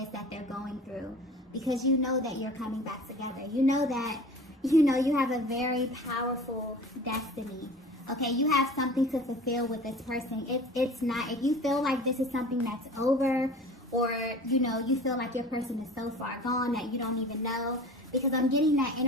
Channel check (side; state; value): both; normal; correlation 0.41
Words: that they're going through. Because you know that you're coming back together. You know that, you have a very powerful destiny. Okay, you have something to fulfill with this person. It's not, if you feel like this is something that's over, or, you feel like your person is so far gone that you don't even know, because I'm getting that